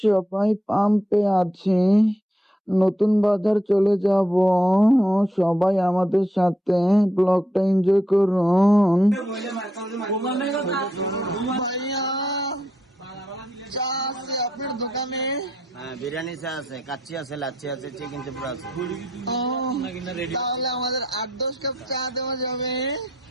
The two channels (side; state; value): both; normal; correlation 0.77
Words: সবাই পাম্পে আছি, নতুন বাজার চলে যাব। সবাই আমাদের সাথে ব্লগটা এনজয় করুন। ভাইয়া, চা আছে আপনার দোকানে? হ্যাঁ, বিরিয়ানি চা আছে, কাচ্চি আছে, লাচ্ছি আছে, চিকেন চিপড়া আছে। তাহলে আমাদের 8-10 কাপ চা দেওয়া যাবে।